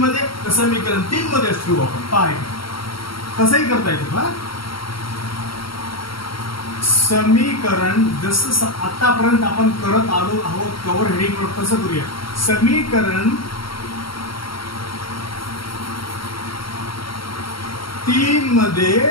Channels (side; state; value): right; late; 0.74 ms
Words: मध्ये तर समीकरण 3 मध्येच ठेवू आपण. पहा कसंही करता येतं. पहा समीकरण जसं आतापर्यंत आपण करत आलो आहोत कव्हर हेडिंग तसं करूया. समीकरण 3 मध्ये